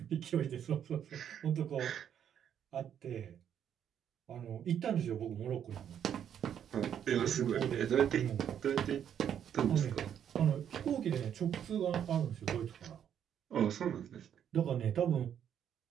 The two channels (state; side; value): quieter; left; 9.2 dB